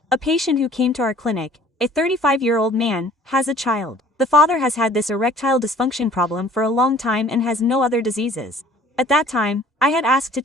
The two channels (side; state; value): both; normal; correlation 0.53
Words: A patient who came to our clinic, a 35-year-old man, has a child. The father has had this erectile dysfunction problem for a long time and has no other diseases. At that time, I had asked to